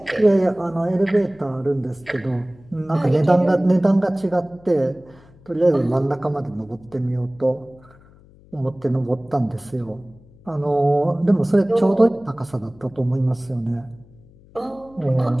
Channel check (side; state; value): left; noise; hum, 26 dB below the sound